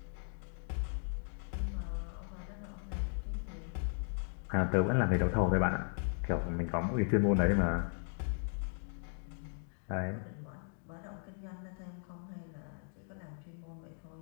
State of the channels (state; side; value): silent; right; 53 dB below the other